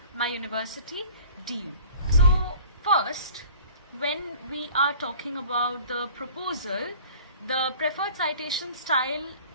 my university, DU. So first, when we are talking about the proposal, the preferred citation style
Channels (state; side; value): inverted; both; correlation -0.47